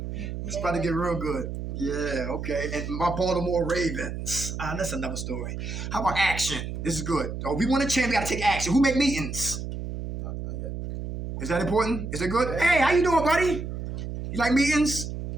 It's about to get real good. Yeah, okay. And my Baltimore Ravens. That's another story. How about action? This is good. Oh, we want to change, we got to take action. Who make meetings? Is that important? Is it good? Hey, how you doing, buddy? You like meetings?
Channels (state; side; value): noise; right; hum, 5 dB below the sound